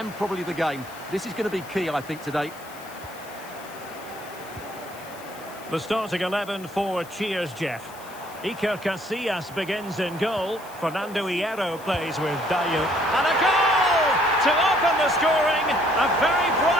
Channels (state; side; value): noise; left; hiss, 20 dB below the sound